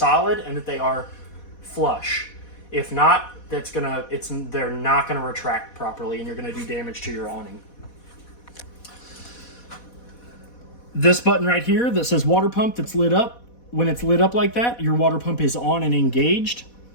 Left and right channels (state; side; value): late; right; 4.1 ms